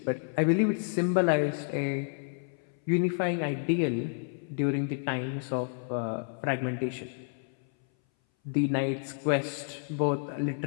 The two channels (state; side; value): silent; right; 58 dB below the other